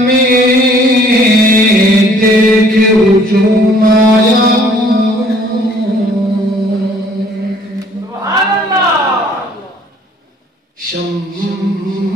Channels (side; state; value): both; normal; correlation 0.58